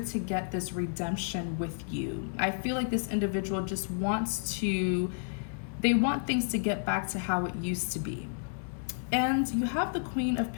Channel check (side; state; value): right; silent; 57 dB below the other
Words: get this redemption with you. I feel like this individual just they want things to get back to how it used to be. And you have the Queen of